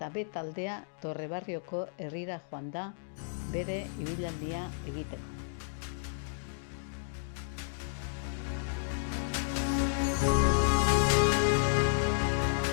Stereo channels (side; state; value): right; silent; digital silence